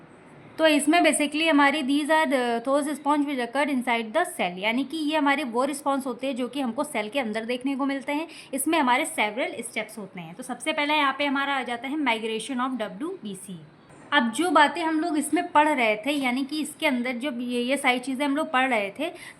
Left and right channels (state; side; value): identical; both; correlation 1.00